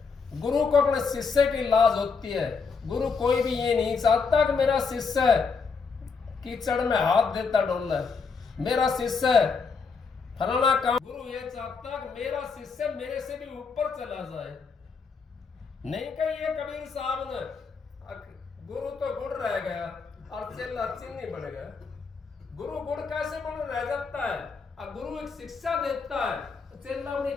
गुरु को अपने शिष्य की लाज होती है। गुरु कोई भी ये नहीं चाहता कि मेरा शिष्य कीचड़ में हाथ देता डोले, मेरा शिष्य फलाना काम। गुरु ये चाहता कि मेरा शिष्य मेरे से भी ऊपर चला जाए। नहीं कही ये कबीर साहब ने, गुरु तो गुड़ रह गया और चेला चीनी बन गया। गुरु गुड़ कैसे बन रह जाता है? अब गुरु एक शिक्षा देता है, चेला अपनी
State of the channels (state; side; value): quieter; right; 5.2 dB